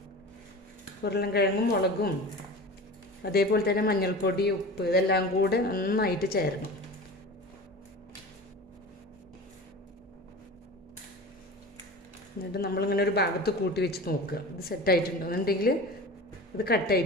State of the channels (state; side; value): normal; both; correlation 0.34